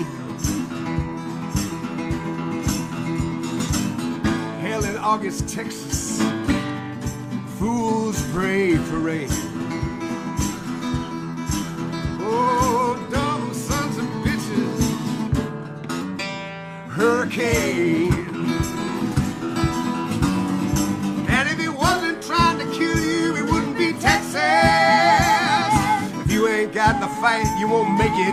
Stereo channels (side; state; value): both; identical; correlation 1.00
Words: Hell in August, Texas, fools pray for rain. Oh, dumb sons of bitches, hurricane. And if he wasn't trying to kill you, it wouldn't be Texas. If you ain't got the fight, you won't make